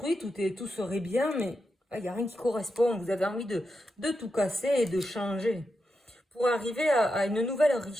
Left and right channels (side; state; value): both; normal; correlation 0.87